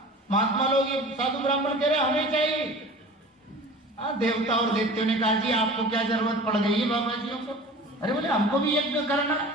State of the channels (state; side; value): normal; both; correlation 0.40